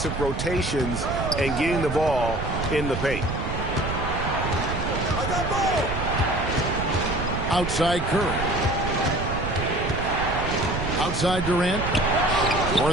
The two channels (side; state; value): right; noise; rumble, 5 dB below the sound